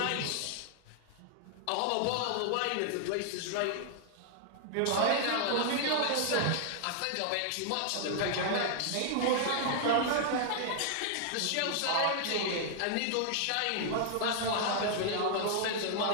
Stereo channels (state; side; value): different; both; correlation 0.00